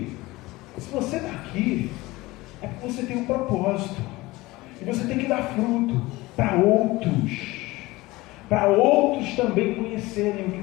se você está aqui, é porque você tem um propósito. E você tem que dar fruto para outros também conhecerem o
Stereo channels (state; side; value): quieter; right; 20.3 dB